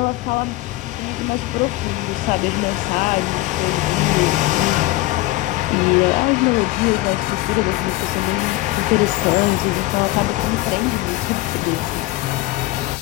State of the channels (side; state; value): right; quieter; 18.5 dB